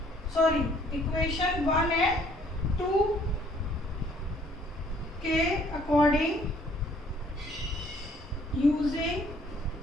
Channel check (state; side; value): normal; both; correlation 0.61